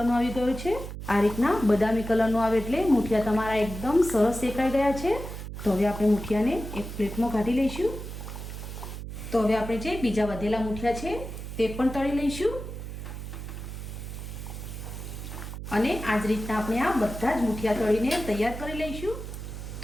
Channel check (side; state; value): right; noise; hum, 9 dB below the sound